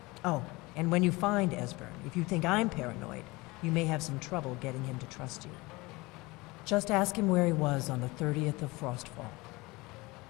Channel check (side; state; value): right; quieter; 22.9 dB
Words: Oh, and when you find Esbern, if you think I'm paranoid, you may have some trouble getting him to trust you. Just ask him where he was on the 30th of Frostfall.